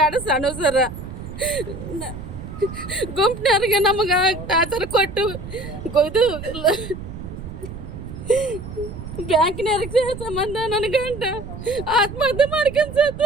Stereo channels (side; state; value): right; noise; rumble, 10 dB below the sound